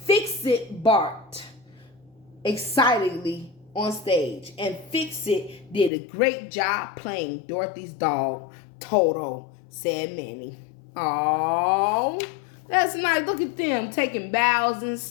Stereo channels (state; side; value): drops out; right; at 5.9 s